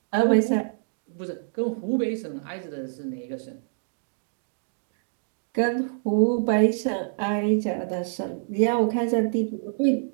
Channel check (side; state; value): left; silent; digital silence